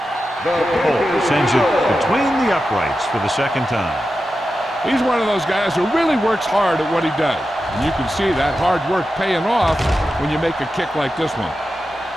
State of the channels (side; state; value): both; normal; correlation 0.91